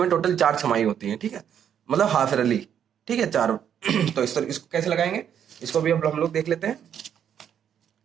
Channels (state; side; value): quieter; left; 9.0 dB